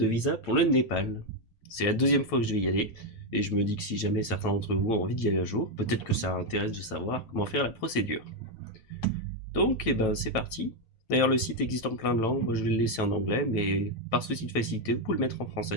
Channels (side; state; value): right; late; 9.1 ms